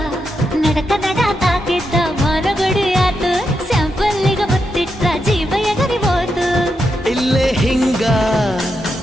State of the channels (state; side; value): normal; both; correlation 0.84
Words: ನಡಕ ನಡ ತಾಕಿದ್ದ ಮರಗಡಿ ಆತು ಸ್ಯಾಂಪಲ್ಲಿಗ ಮುತ್ತಿಟ್ಟ ಜೀವ ಎಗರಿ ಹೋತು ಇಲ್ಲೇ ಹಿಂಗ